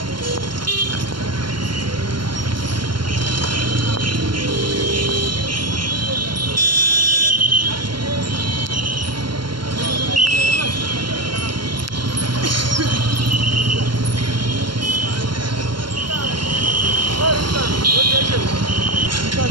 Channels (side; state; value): left; late; 0.72 ms